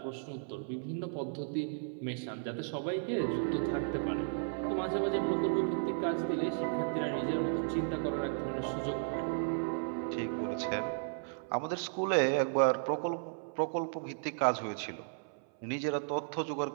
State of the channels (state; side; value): silent; left; 55 dB below the other